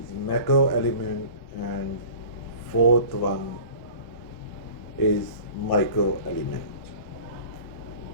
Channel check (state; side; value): late; right; 1.1 ms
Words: macro element, and fourth one is micro element.